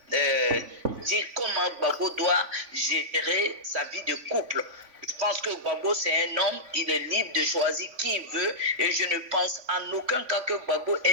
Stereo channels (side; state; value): left; late; 3.5 ms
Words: dire comment Gbagbo doit gérer sa vie de couple. Je pense que Gbagbo c'est un homme, il est libre de choisir qui il veut et je ne pense en aucun cas que Gbagbo